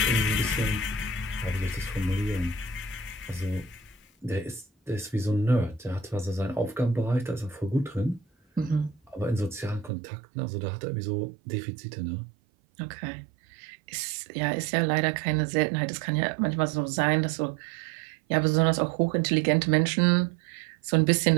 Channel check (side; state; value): left; drops out; at 9.9 s